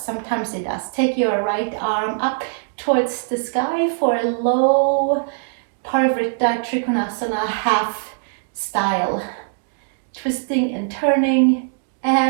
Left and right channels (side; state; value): left; silent; digital silence